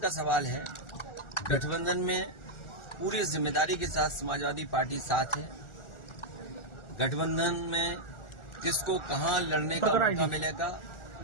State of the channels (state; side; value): late; right; 1.4 ms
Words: सवाल है, गठबंधन में पूरी जिम्मेदारी के साथ समाजवादी पार्टी साथ है। गठबंधन में किसको कहां लड़ने का मौका मिलेगा,